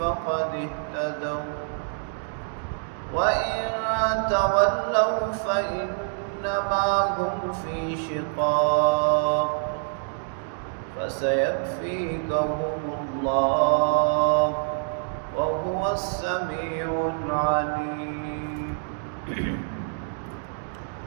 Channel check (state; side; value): silent; left; digital silence